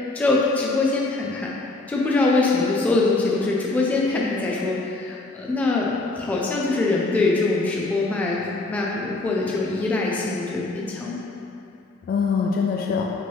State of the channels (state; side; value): quieter; right; 3.0 dB